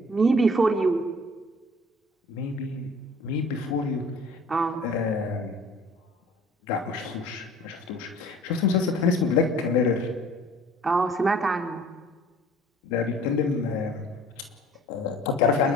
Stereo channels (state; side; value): normal; both; correlation 0.50